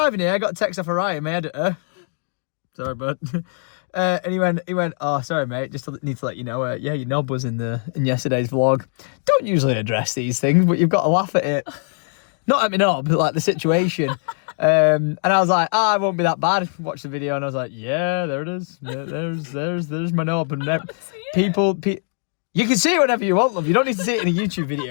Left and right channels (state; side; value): silent; right; digital silence